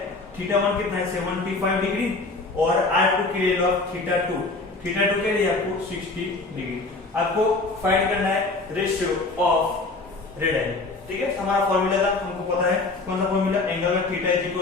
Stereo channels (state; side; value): quieter; right; 3.4 dB